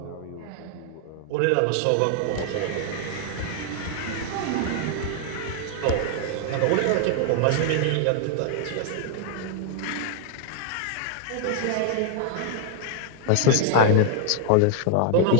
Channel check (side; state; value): both; different; correlation 0.00